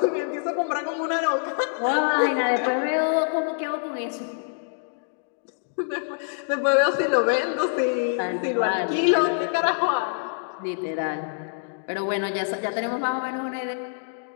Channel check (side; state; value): right; silent; digital silence